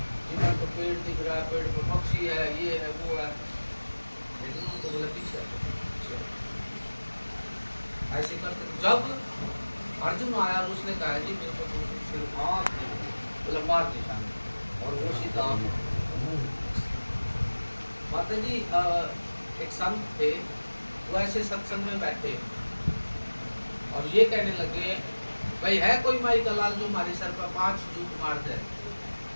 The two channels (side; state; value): both; inverted; correlation -1.00